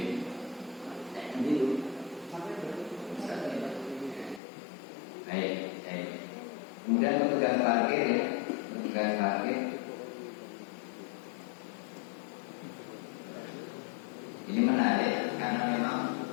biru. Baik. Kemudian petugas parkir ya, petugas parkir ini menarik karena memang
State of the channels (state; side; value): drops out; right; at 4.4 s